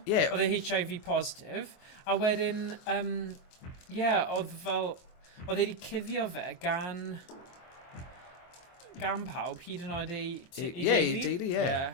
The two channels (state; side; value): late; right; 23 ms